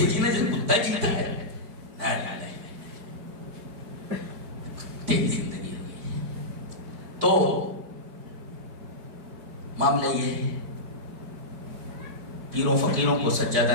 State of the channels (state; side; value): late; left; 4.6 ms